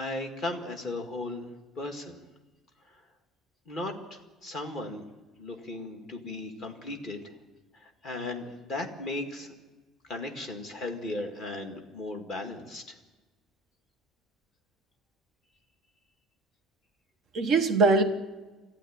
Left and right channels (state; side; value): normal; both; correlation 0.39